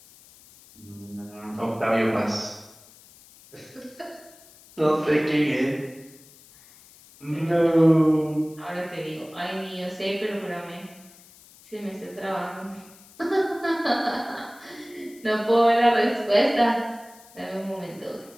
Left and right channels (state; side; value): noise; left; hiss, 24 dB below the sound